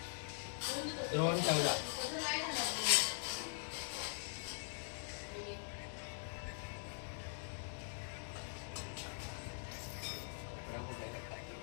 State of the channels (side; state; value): right; silent; digital silence